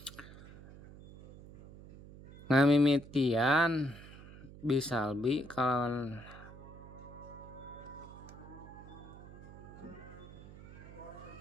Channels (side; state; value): right; noise; hum, 16 dB below the sound